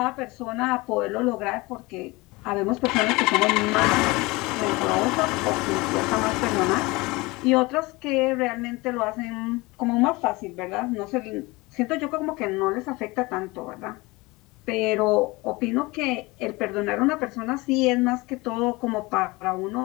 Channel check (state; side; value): quieter; right; 23.2 dB